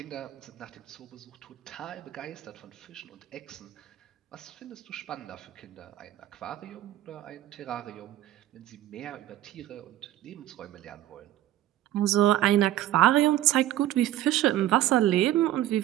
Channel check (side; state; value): left; quieter; 13.7 dB